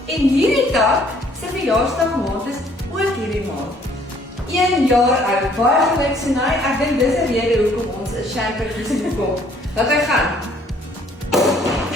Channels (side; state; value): both; normal; correlation 0.61